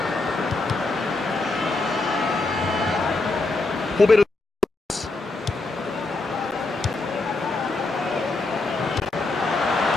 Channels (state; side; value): quieter; right; 3.2 dB